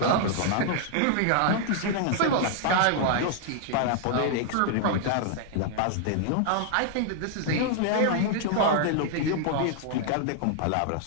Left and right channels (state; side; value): different; both; correlation -0.01